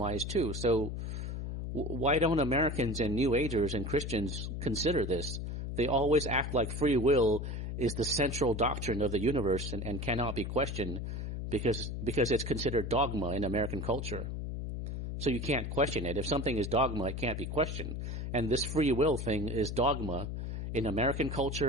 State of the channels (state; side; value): noise; left; hum, 4 dB below the sound